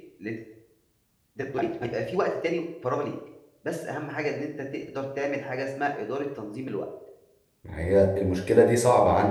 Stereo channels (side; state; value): both; identical; correlation 1.00